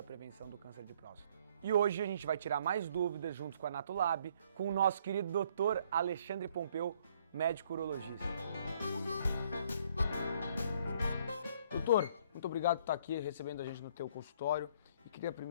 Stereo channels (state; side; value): inverted; both; correlation -0.63